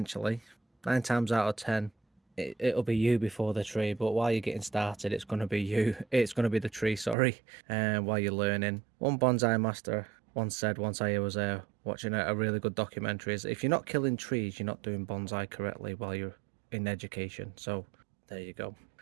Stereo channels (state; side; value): drops out; left; at 7.2 s